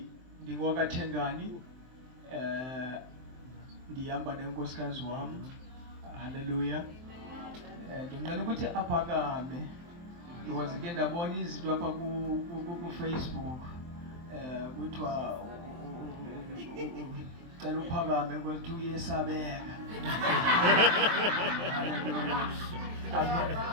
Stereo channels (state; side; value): late; left; 23 ms